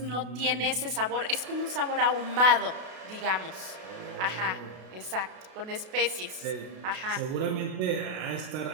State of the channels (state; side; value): late; left; 32 ms